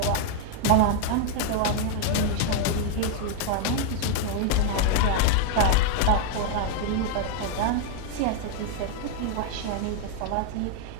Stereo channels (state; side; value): different; both; correlation 0.00